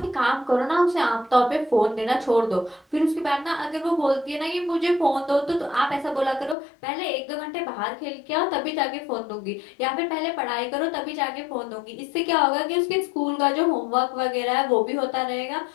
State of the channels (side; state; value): right; drops out; at 6.6 s